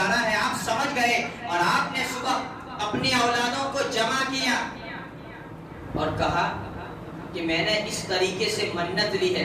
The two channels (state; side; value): identical; both; correlation 1.00